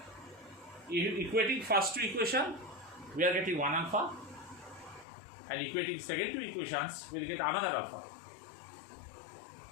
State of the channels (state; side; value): drops out; right; at 5.1 s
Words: Equating first two equation, we are getting one alpha, and equating second two equations, we'll get another alpha.